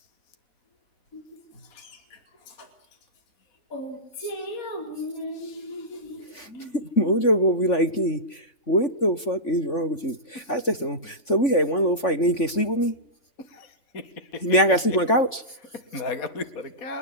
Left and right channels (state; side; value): late; right; 3.5 ms